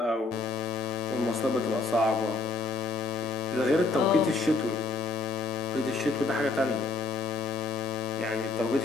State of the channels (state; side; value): quieter; right; 3.6 dB